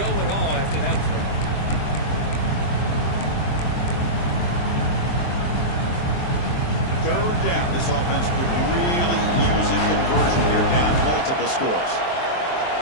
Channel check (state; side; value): late; right; 23 ms